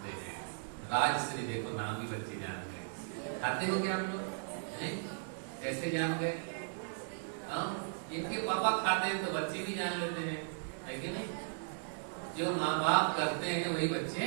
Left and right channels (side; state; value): left; silent; digital silence